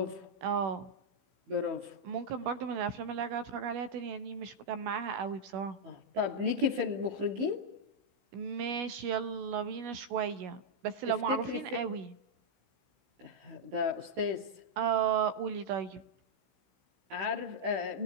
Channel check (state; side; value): late; left; 16 ms